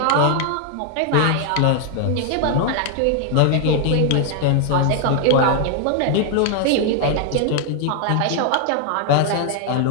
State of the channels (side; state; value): both; different; correlation 0.00